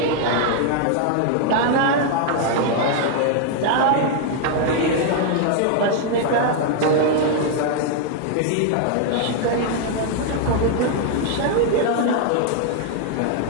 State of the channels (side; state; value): both; different; correlation 0.00